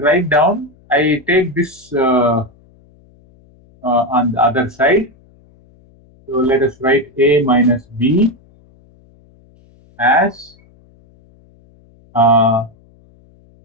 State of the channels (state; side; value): noise; left; hum, 30 dB below the sound